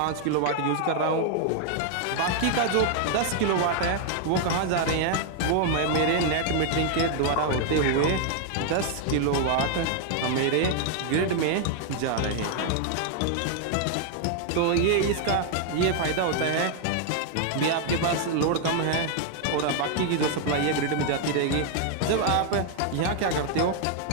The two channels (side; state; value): both; different; correlation 0.00